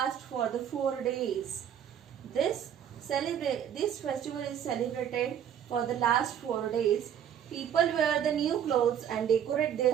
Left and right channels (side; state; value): left; quieter; 9.4 dB